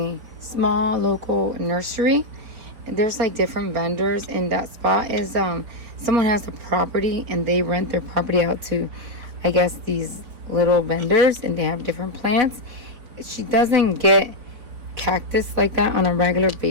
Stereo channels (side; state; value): left; late; 4.5 ms